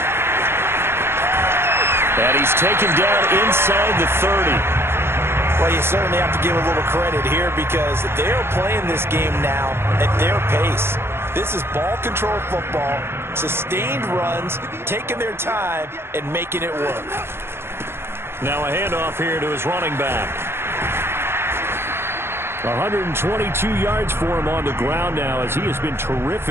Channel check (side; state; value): left; late; 0.12 ms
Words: And he's taken down inside the 30. Well, you certainly have to give a little credit here because they're playing this game now at their pace. This is ball control football, sustained runs, taking their time, and making it work. Now a handoff here to his running back. 122 yards for him on the ground now as he has been